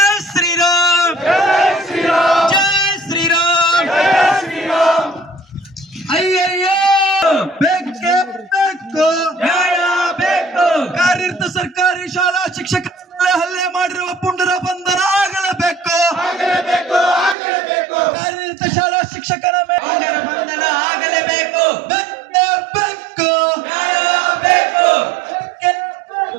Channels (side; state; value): left; drops out; at 17.4 s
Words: ಶ್ರೀರಾಮ್ ಜೈ ಶ್ರೀರಾಮ್ ಅಯ್ಯಯ್ಯೋ ಬೇಕೇ ಬೇಕು ನ್ಯಾಯ ಬೇಕು ಕಾರ್ಯರತ ಸರ್ಕಾರಿ ಶಾಲಾ ಶಿಕ್ಷಕ ಹಲ್ಲೆ ಮಾಡಿರುವ ಪುಂಡರ ಬಂಧನ ಆಗಲೇಬೇಕು ಕಾರ್ಯರತ ಶಾಲಾ ಶಿಕ್ಷಕರ ಮೇಲೆ ಬಂಧನ ಆಗಲೇಬೇಕು ಬೇಕು ನ್ಯಾಯ ಬೇಕು